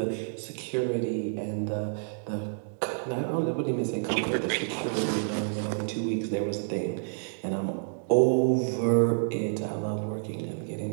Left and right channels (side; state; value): left; silent; digital silence